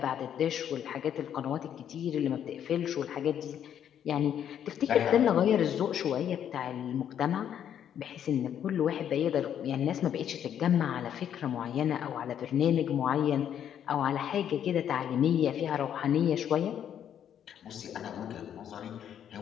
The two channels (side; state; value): right; quieter; 9.5 dB